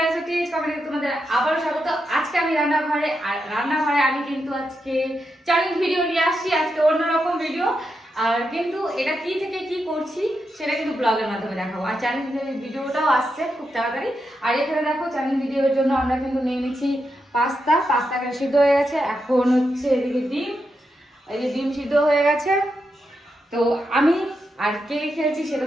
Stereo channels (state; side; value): normal; both; correlation 0.85